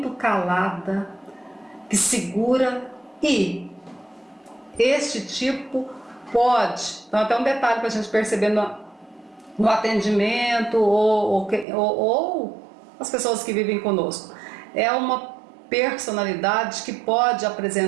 calada, que segura, e este tipo pode, então até um detalhe para a gente perceber no atendimento ou as pessoas que vivem conosco, é uma personalidade que pode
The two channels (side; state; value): left; drops out; at 11.7 s